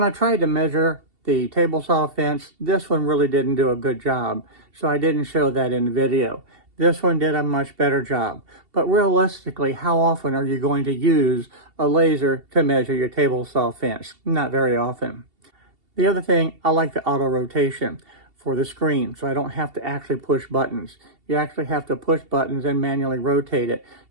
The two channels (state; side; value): late; left; 2.7 ms